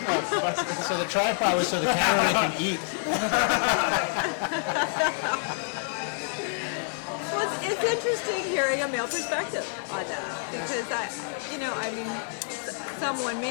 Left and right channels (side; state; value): right; silent; 60 dB below the other